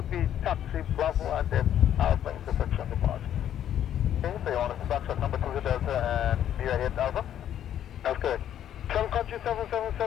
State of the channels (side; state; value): right; quieter; 10.5 dB